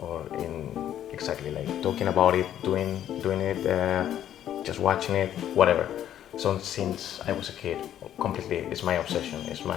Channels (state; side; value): quieter; right; 10.9 dB